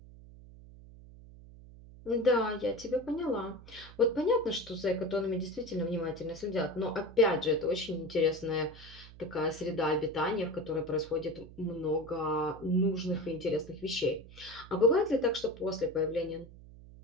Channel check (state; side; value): noise; right; hum, 19 dB below the sound